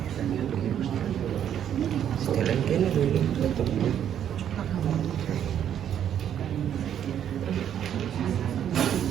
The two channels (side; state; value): left; quieter; 9.7 dB